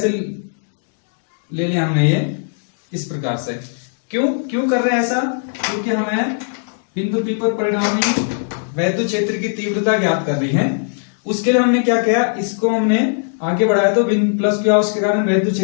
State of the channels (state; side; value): silent; right; digital silence